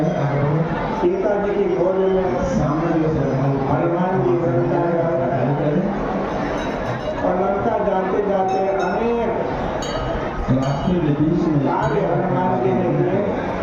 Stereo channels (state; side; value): identical; both; correlation 1.00